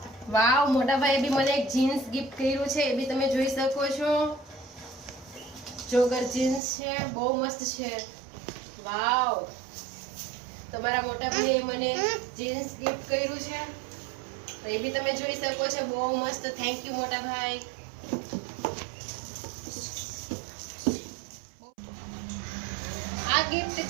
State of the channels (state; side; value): drops out; left; at 6.6 s